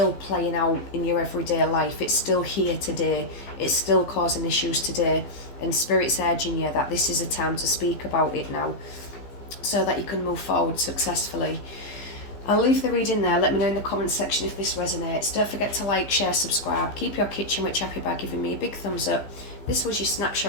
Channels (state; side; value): late; right; 15 ms